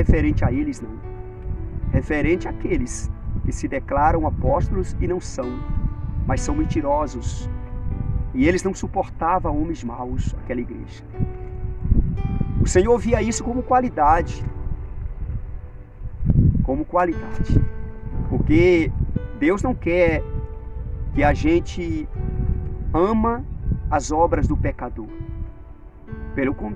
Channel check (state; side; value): identical; both; correlation 1.00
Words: a eles, não. Referente àqueles que se declaram apóstolos e não são, mas são mentirosos. E eles não suportavam homens maus, aquela igreja. O Senhor via isso como qualidade. Como qualidade. Porque Deus não quer que a gente ama as obras do pecador. Pelo